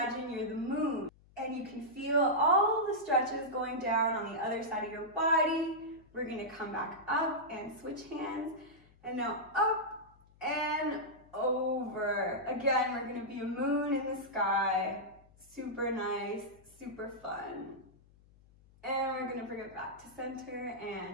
you're the moon. And you can feel all the stretches going down on the other side of your body. We're gonna come back up and switch hands. And now up and over. Again, we're gonna be a moon in the sky. Super nice, super fun. And we're gonna bring it back to center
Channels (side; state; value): left; noise; hum, 27 dB below the sound